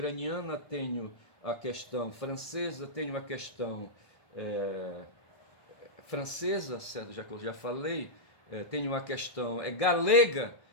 tenho a questão francesa, tenho a questão francesa, certo? Já que eu já falei, tenho a questão galega.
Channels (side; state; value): right; late; 1.6 ms